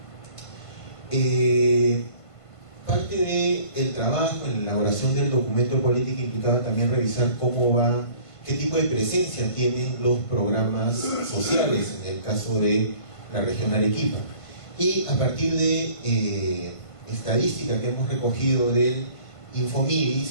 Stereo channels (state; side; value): late; right; 1.5 ms